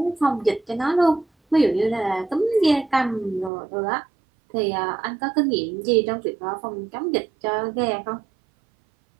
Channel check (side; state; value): left; drops out; at 3.5 s